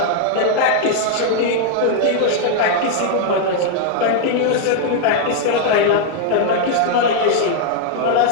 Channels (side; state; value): both; different; correlation 0.00